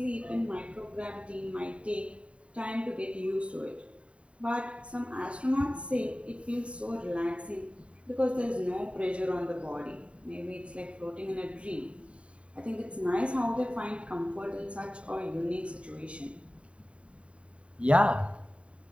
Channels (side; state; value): left; late; 0.061 ms